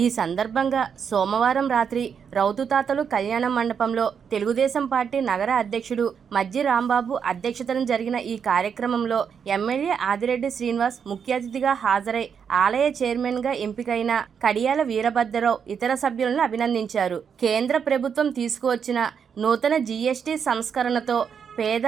ఈ సందర్భంగా సోమవారం రాత్రి రౌతుతాతలు కళ్యాణ మండపంలో తెలుగుదేశం పార్టీ నగర అధ్యక్షుడు మజ్జి రాంబాబు అధ్యక్షతన జరిగిన ఈ కార్యక్రమంలో ఎమ్మెల్యే ఆదిరెడ్డి శ్రీనివాస్ ముఖ్య అతిథిగా హాజరై ఆలయ చైర్మన్గా ఎంపికైన కడియాల వీరభద్రరావు ఇతర సభ్యులను అభినందించారు. కేంద్ర ప్రభుత్వం తీసుకువచ్చిన నూతన జీఎస్టీ సంస్కరణతో పేద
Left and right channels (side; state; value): left; quieter; 7.1 dB